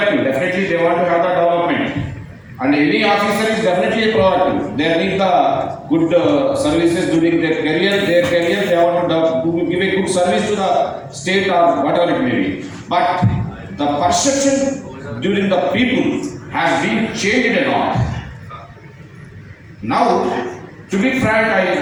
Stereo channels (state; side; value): identical; both; correlation 1.00